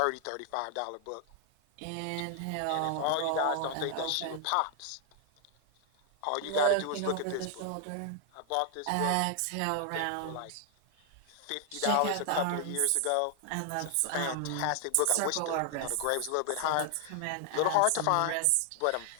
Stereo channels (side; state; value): both; different; correlation 0.00